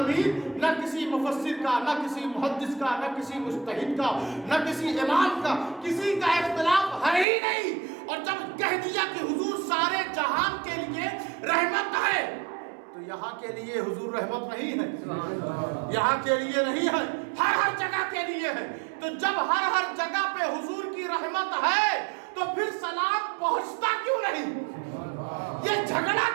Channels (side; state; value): left; drops out; at 7.2 s